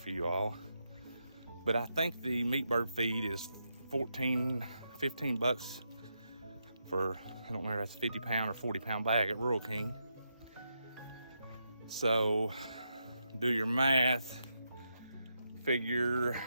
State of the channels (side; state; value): both; inverted; correlation -0.84